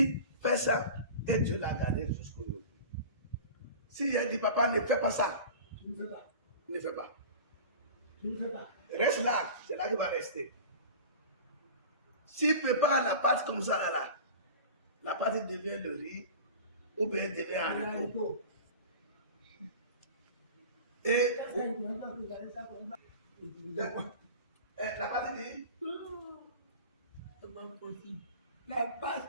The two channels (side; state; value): both; inverted; correlation -0.36